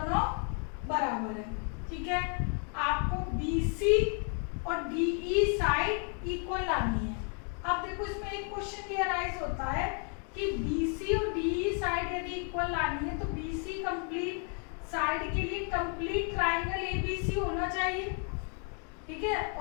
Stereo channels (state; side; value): quieter; right; 40.0 dB